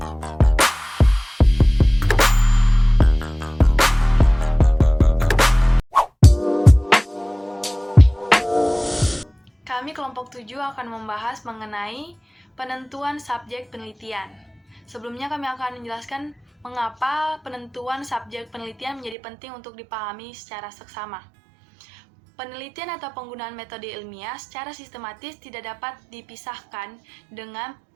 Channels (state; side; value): drops out; left; at 19.2 s